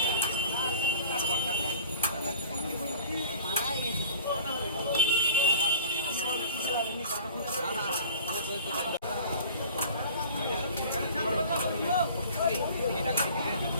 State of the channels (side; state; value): both; inverted; correlation -0.43